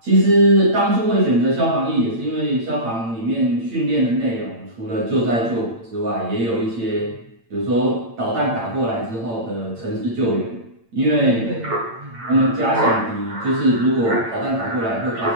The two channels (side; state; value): left; late; 8.8 ms